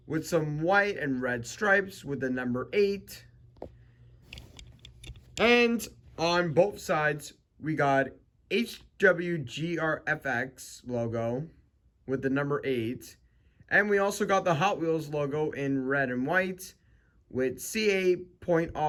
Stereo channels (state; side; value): identical; both; correlation 1.00